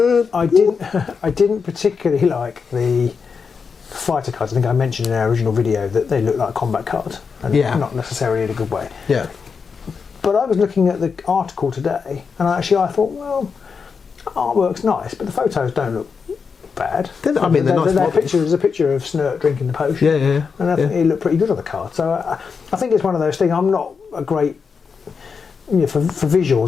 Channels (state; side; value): quieter; right; 5.6 dB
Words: I didn't particularly like the fighter cards. I think I mentioned in our original video that they look like combat cards, and not necessarily in a good way. Yeah. But I was looking at the article today, and I thought, well, artwork's nice, but the photos don't look bad. I mean, there's a picture of Snurt drinking the potion. Yeah. And I think it looked pretty good on the card. So I think it's one of those things. I'm not a great, for